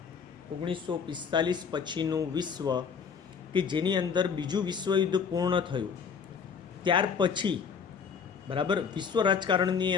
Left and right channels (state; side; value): quieter; right; 6.4 dB